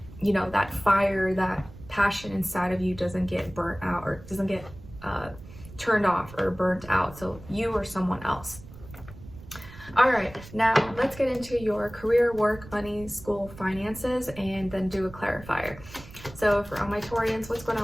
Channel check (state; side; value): noise; right; rumble, 17 dB below the sound